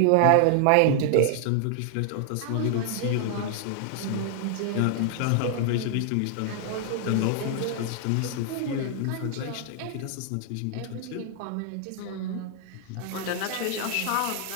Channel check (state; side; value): different; both; correlation 0.00